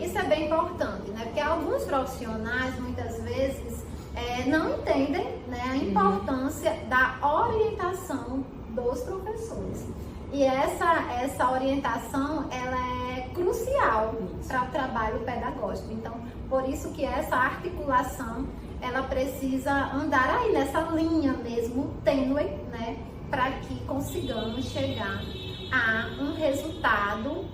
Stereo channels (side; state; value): both; identical; correlation 1.00